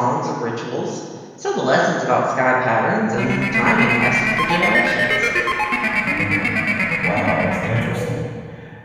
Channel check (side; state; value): both; identical; correlation 1.00